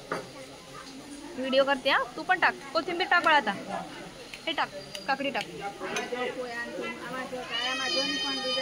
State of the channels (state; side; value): identical; both; correlation 1.00